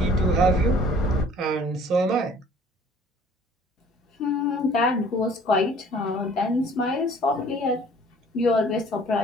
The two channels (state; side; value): normal; both; correlation 0.53